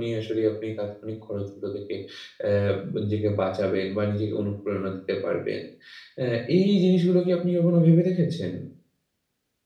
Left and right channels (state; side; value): identical; both; correlation 1.00